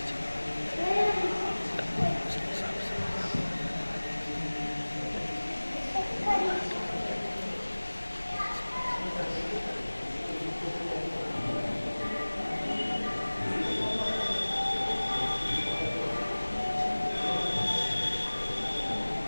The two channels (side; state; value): both; inverted; correlation -1.00